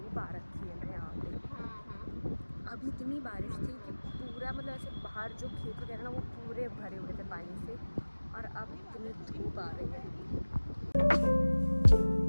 आ रखी है ना यहाँ पे। अभी इतनी बारिश थी कि पूरा मतलब ऐसे बाहर जो खेत वगैरह ना वो पूरे भरे हुए थे पानी से, और अब इतनी धूप आ रही है।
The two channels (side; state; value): both; inverted; correlation -1.00